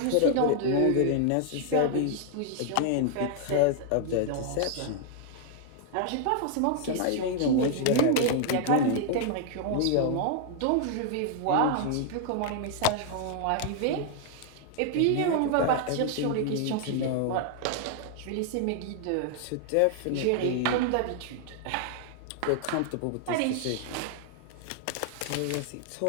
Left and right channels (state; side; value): different; both; correlation 0.00